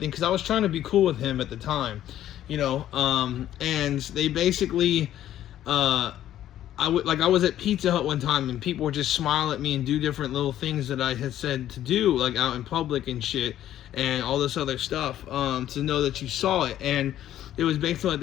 because I was trying to be cool with him at the time, and they basically, I was at Pizza Hut one time and people would just smile at me and do different little things that I had said to do, out in public and shit and all this other stuff, to know that you saw it. And it was basically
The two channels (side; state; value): right; quieter; 12.1 dB